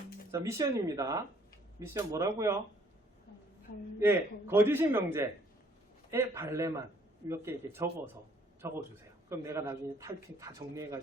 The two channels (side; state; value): both; normal; correlation 0.62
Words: 자, 미션입니다. 미션 뭐라고요? 예, 거짓인 명제의 발레만 몇 개 이렇게 적어주세요. 그럼 내가 나중에 타이핑 다